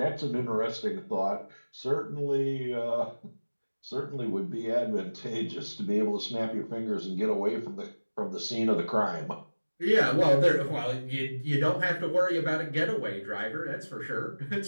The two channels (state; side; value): inverted; both; correlation -1.00